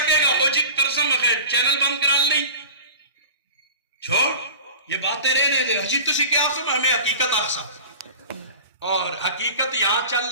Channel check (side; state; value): both; inverted; correlation -0.37